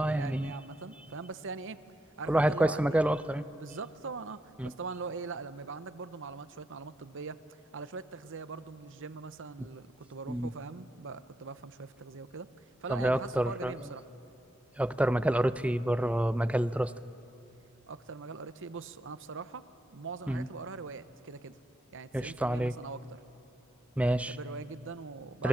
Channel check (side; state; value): both; normal; correlation 0.82